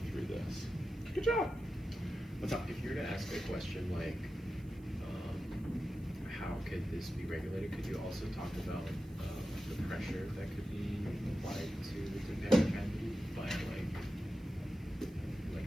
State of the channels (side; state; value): right; noise; hiss, 29 dB below the sound